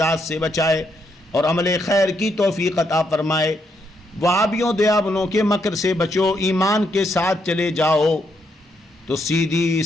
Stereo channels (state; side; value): normal; both; correlation 0.77